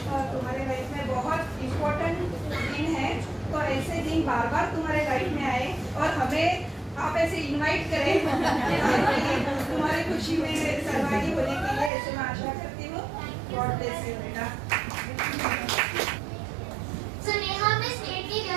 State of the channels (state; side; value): drops out; left; at 11.9 s